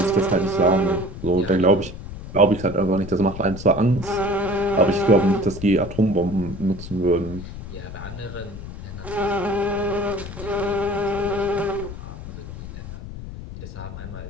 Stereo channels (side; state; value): left; noise; rumble, 11 dB below the sound